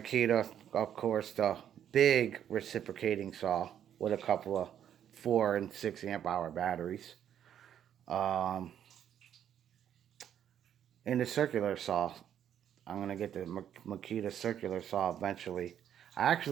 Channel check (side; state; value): left; quieter; 9.8 dB